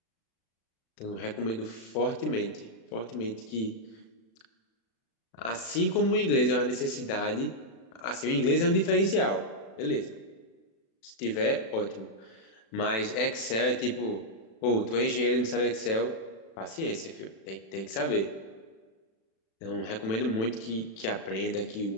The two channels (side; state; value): right; late; 36 ms